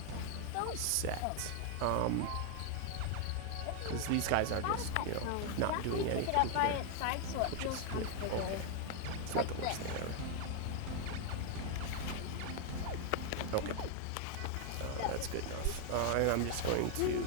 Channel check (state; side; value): different; both; correlation 0.01